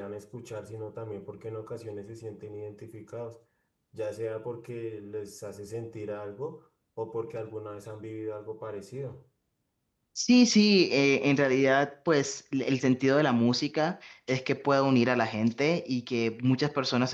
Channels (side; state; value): both; identical; correlation 1.00